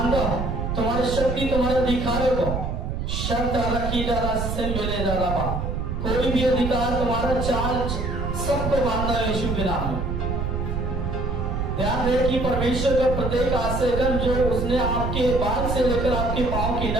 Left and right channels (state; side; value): noise; right; rumble, 3 dB below the sound